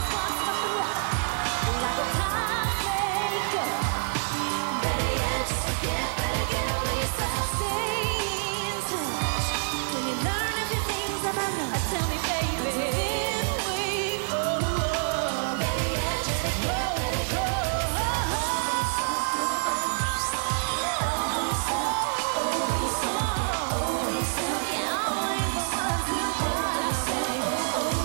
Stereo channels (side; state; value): left; silent; digital silence